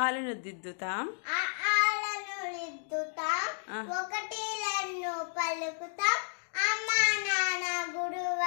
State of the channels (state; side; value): silent; right; digital silence